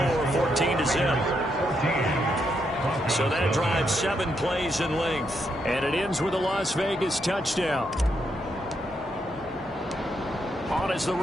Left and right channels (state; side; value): normal; both; correlation 0.79